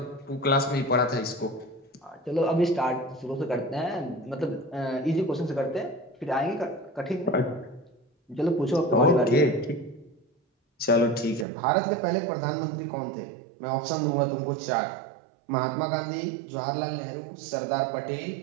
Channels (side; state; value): left; drops out; at 11.5 s